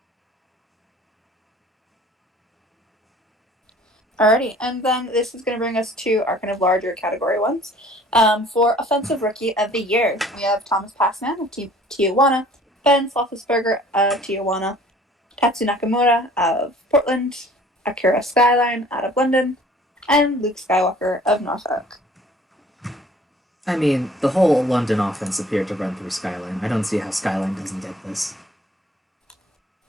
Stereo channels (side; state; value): both; normal; correlation 0.52